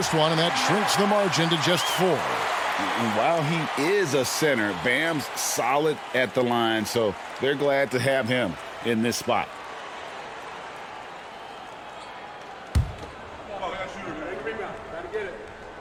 one, and that shrinks the margin to just 4. And while he is a center, Bam's solid at the line, so they're glad to have him in this spot.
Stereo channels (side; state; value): both; identical; correlation 1.00